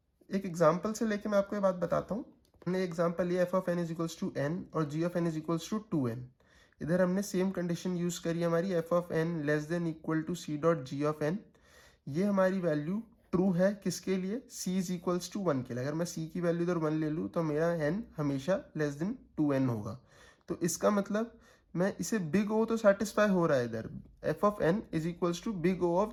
एक एग्जाम्पल से लेके मैं आपको ये बात बताता हूँ। हमने एग्जाम्पल लिया F of N is equals to N और G of N is equals to 2n। इधर हमने सेम कंडीशन यूज करी हमारी F of N less than equal to C dot G of N. ये हमारी वैल्यू ट्रू है किसके लिए, c इज इक्वल्स टू 1 के लिए। अगर मैं c की वैल्यू इधर 1 ले लूँ तो मेरा n हमेशा लेस देन 2n होगा। तो इसका मतलब मैं इसे बिग ओ तो सेटिस्फाई हो रहा है इधर, f of n is equals to big O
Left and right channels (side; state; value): both; identical; correlation 1.00